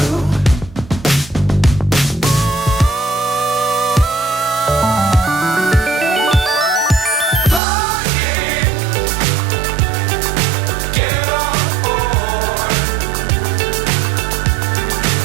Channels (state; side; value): drops out; left; at 7.6 s